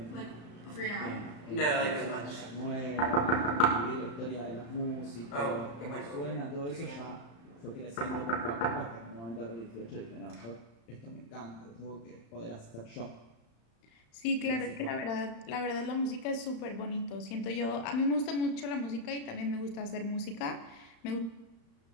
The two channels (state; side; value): late; right; 35 ms